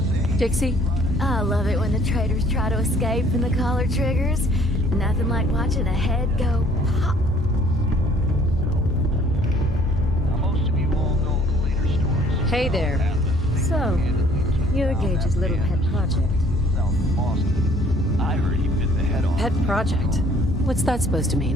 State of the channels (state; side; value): normal; both; correlation 0.57